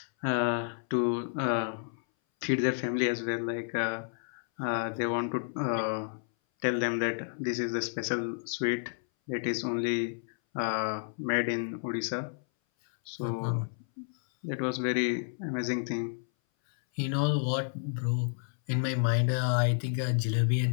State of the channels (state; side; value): silent; right; 57 dB below the other